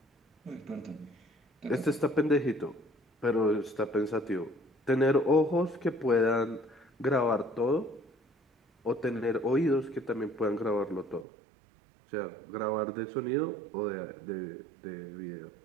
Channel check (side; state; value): left; drops out; at 11.2 s